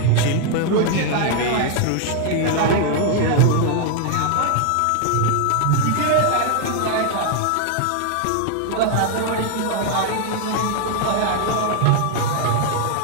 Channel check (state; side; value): different; both; correlation 0.00